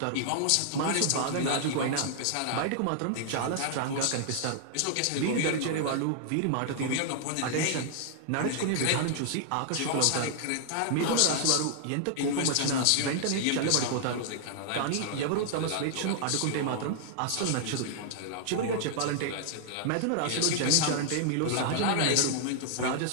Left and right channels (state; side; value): different; both; correlation 0.00